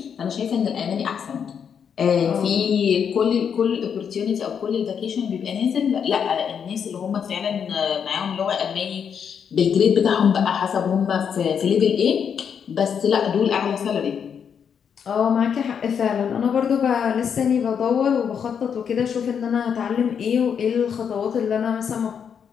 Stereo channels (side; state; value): right; quieter; 7.4 dB